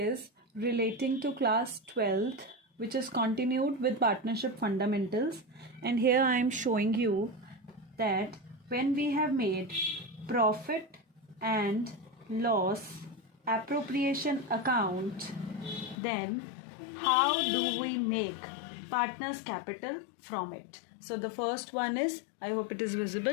relating to class 12th, which is continued with partnership fundamentals. And here I am showing you that when we have made profit and loss appropriation account, then how do we make partners capital from it? So the first one is, I hope it is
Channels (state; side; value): drops out; right; at 16.0 s